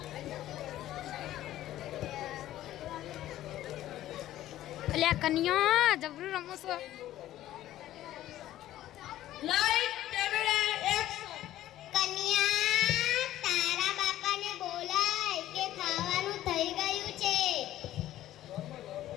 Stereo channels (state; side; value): quieter; right; 13.7 dB